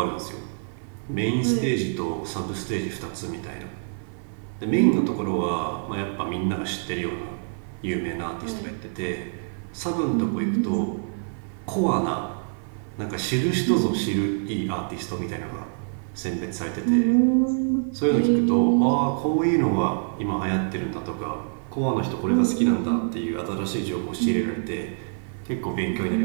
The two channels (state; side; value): silent; left; 59 dB below the other